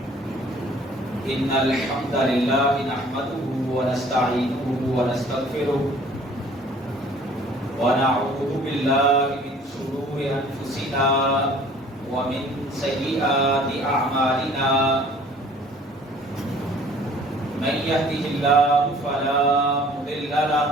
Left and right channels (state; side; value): normal; both; correlation 0.53